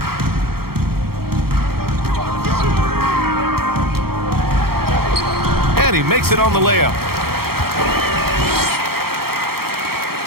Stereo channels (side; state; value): left; late; 0.94 ms